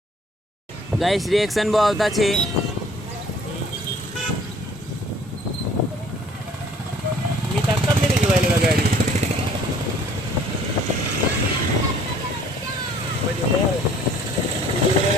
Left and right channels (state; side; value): normal; both; correlation 0.55